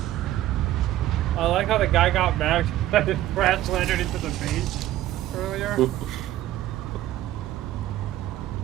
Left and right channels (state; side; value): quieter; left; 14.1 dB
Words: I like how the guy got mad that his crash landed into the base earlier.